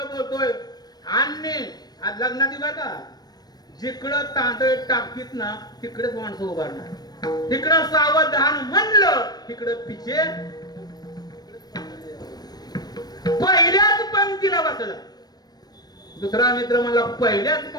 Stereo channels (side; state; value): right; late; 0.19 ms